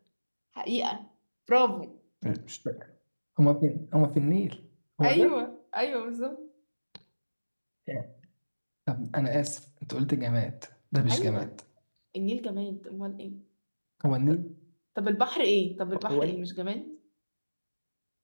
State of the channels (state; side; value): inverted; both; correlation -1.00